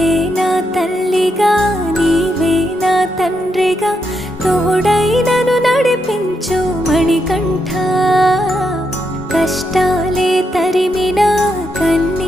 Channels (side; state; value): both; normal; correlation 0.81